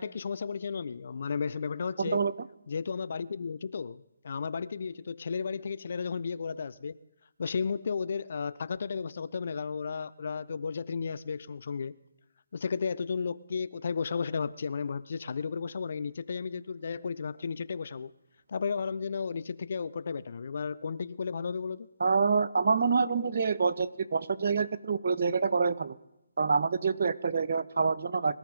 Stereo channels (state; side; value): inverted; both; correlation -0.80